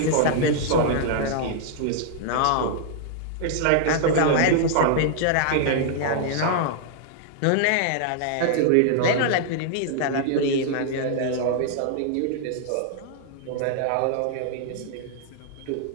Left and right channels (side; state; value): both; different; correlation -0.01